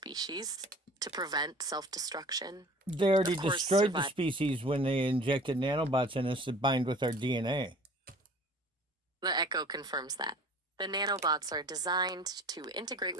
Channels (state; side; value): normal; both; correlation 0.46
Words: to prevent self-destruction. They already destroyed the species when they injected nanobots in us that bind with our DNA. The Echo confirms that. The nanobots are designed to integrate